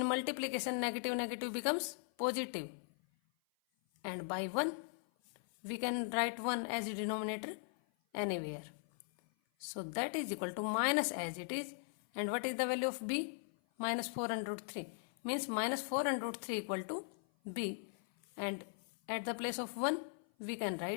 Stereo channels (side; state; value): right; silent; 52 dB below the other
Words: multiplication negative becomes positive, and by 1 we can write 1 as a denominator anywhere. So that is equal to minus as it is, and what is the value of b? Minus 4 under root 3 means minus 4 under root 3 equal to b, and at the place of 1 we can